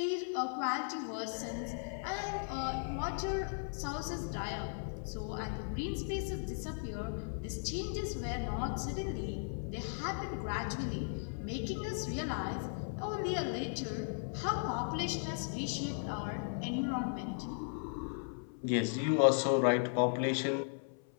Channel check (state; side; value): silent; right; 53 dB below the other